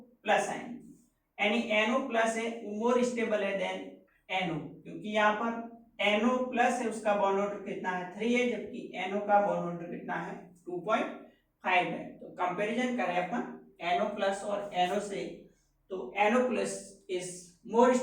प्लस आयन, यानी NO प्लस है मोर स्टेबल है देन NO, क्योंकि यहाँ पर NO प्लस है उसका बॉन्ड ऑर्डर कितना है, 3 है, जबकि NO का बॉन्ड ऑर्डर कितना है, 2.5 है। तो कंपैरिजन करें अपन NO प्लस और NO से तो NO plus is more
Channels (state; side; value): identical; both; correlation 1.00